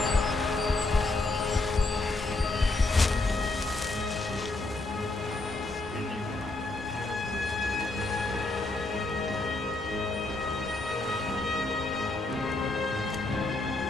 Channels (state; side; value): quieter; right; 3.0 dB